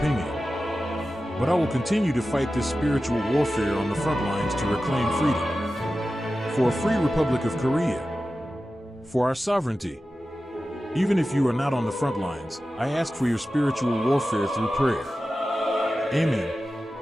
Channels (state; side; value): normal; both; correlation 0.94